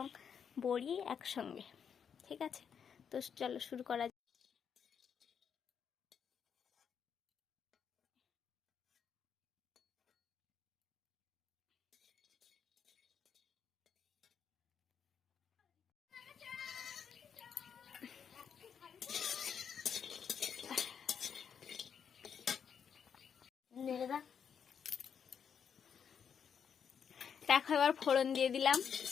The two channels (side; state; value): right; quieter; 7.4 dB